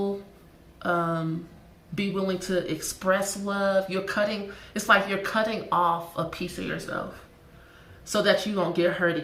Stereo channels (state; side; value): identical; both; correlation 1.00